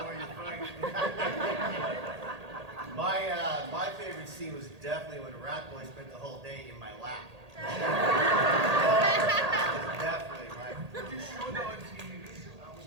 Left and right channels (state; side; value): late; left; 1.8 ms